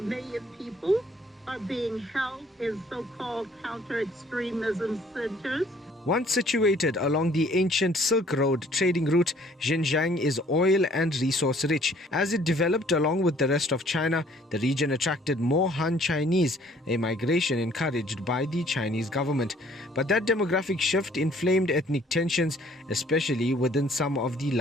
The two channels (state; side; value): normal; both; correlation 0.58